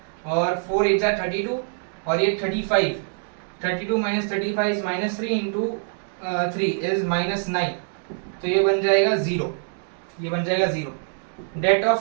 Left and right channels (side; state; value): left; silent; 62 dB below the other